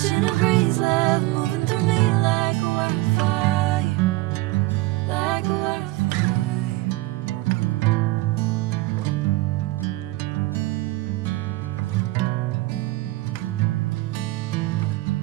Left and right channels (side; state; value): left; quieter; 19.4 dB